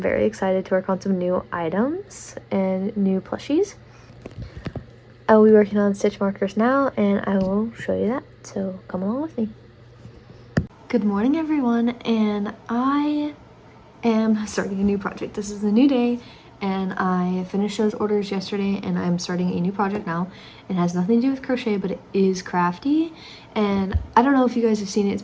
excited to work on some new items and new plushies. I will be working on stitch markers now, and I will show you that, so come along with me. Good morning, everyone, and I am starting a new project. This is a new day, and I finished those orders yesterday, and I'm starting a new project now. It has nothing to do with crochet, but it is crafty, and I don't know if you guys have seen it. It's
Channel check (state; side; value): identical; both; correlation 1.00